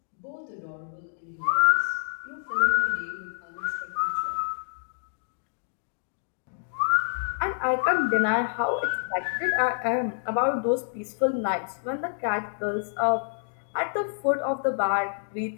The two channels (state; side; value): silent; right; digital silence